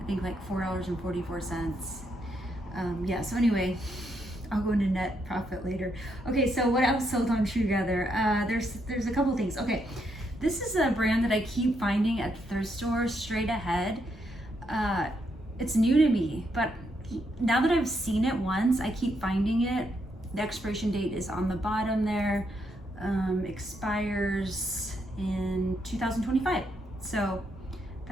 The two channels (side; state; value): both; normal; correlation 0.78